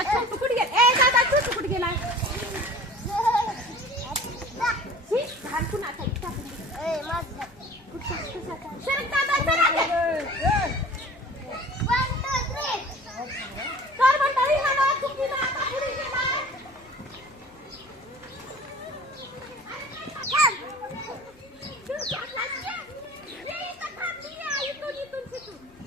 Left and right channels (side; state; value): both; normal; correlation 0.43